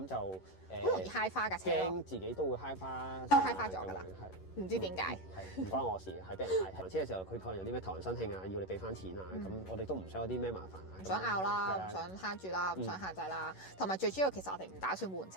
就好容易揩花架車咯，驚自己都會揩花，都揩花咗㗎啦，唔知點解，係唔關我事，係俾人揩。還車嘅時候，佢可能有啲咩頭人申慶啊，要你俾翻錢啊，咁我哋都唔想有啲咩麻煩啊，唔想拗啦，唔想慳住啦，唔想限制啦，同埋最主要其實我哋唔打算換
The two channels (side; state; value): right; late; 11 ms